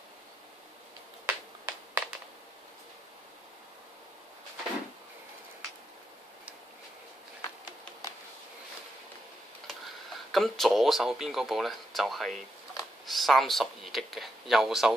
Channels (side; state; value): both; normal; correlation 0.82